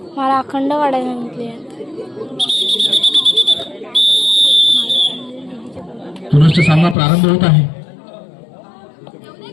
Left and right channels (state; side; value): drops out; right; at 7.0 s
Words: मला अखंड काढायला सांगितले. पुनश्च सामना प्रारंभ होत आहे.